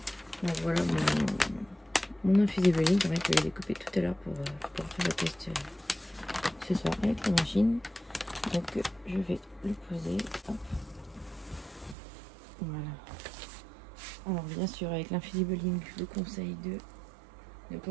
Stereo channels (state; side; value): drops out; left; at 12.0 s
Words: Donc voilà mon infusible ligne. C'est vrai que je l'ai découpé tout à l'heure pour faire le test ce soir avec la machine. Donc je vais le poser. Hop. Voilà. Alors bien sûr, avec l'infusible ligne, je vous conseille de ne pas